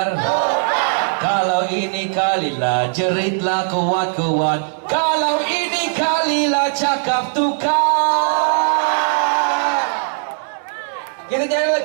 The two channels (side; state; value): left; silent; digital silence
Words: Kalau ini kalilah jeritlah kuat-kuat. Kalau ini kalilah cakap tukar. Kita